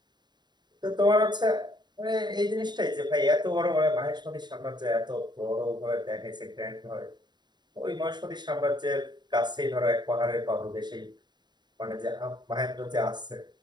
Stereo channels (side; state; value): left; late; 0.21 ms